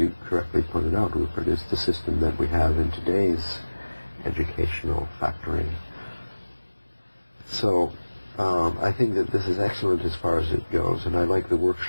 correctly pointed out, Rupert, is the system that we have in today's educational factory. So I think that this is excellent as far as it goes, and I like the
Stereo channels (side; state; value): both; inverted; correlation -1.00